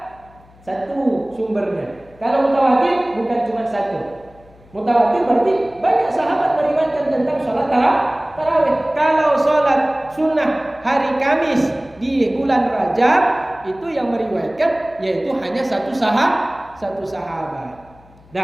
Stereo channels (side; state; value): left; noise; hum, 26 dB below the sound